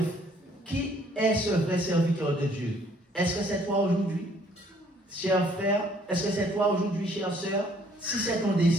qui est ce vrai serviteur de Dieu? Est-ce que c'est toi aujourd'hui, cher frère? Est-ce que c'est toi aujourd'hui, chère sœur? Si c'est ton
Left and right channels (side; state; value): both; normal; correlation 0.62